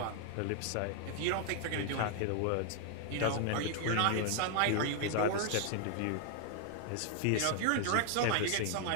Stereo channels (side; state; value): both; different; correlation 0.00